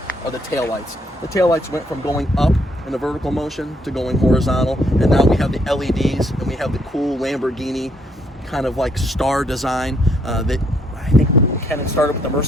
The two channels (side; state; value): both; normal; correlation 0.71